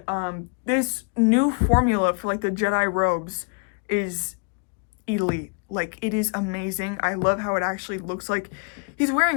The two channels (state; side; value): quieter; right; 37.1 dB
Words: this new formula for like the Jedi robes is elite. Like, it is amazing. I love how it actually looks like he's